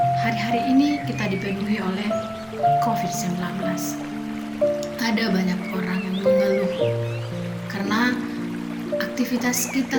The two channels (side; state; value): both; identical; correlation 1.00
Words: Hari-hari ini kita dipenuhi oleh COVID-19. Ada banyak orang yang mengeluh karena aktivitas kita